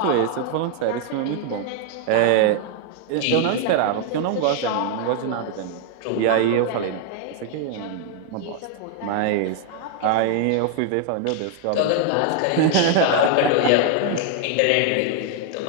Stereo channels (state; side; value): different; both; correlation 0.00